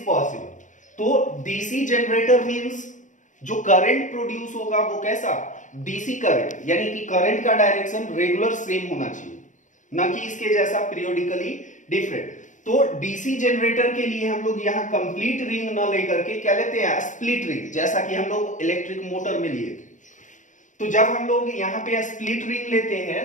possible? तो DC जनरेटर मींस जो करंट प्रोड्यूस होगा वो कैसा, डीसी करंट, यानी कि करंट का डायरेक्शन रेगुलर सेम होना चाहिए, ना कि इसके जैसा पीरियोडिकली डिफरेंट। तो डीसी जनरेटर के लिए हम लोग यहाँ कंप्लीट रिंग ना लेकर के क्या लेते हैं, स्प्लिट रिंग, जैसा कि हम लोग इलेक्ट्रिक मोटर में लिए थे। तो जब हम लोग यहाँ पे स्प्लिट रिंग लेते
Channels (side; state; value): right; late; 0.36 ms